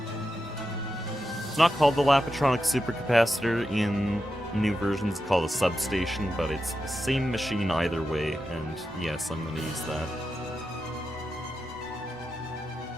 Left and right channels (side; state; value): both; normal; correlation 0.89